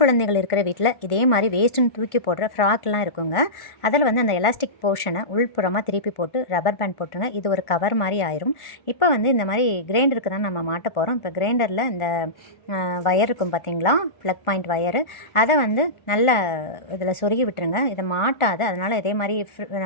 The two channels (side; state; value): right; late; 1.5 ms